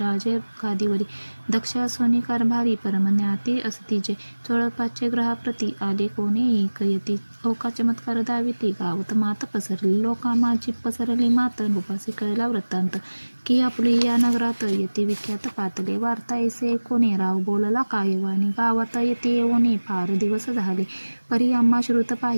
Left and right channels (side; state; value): both; inverted; correlation -1.00